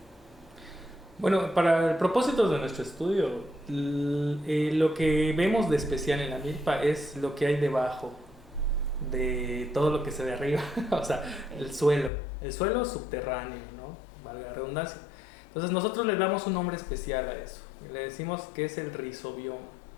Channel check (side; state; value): right; drops out; at 12.1 s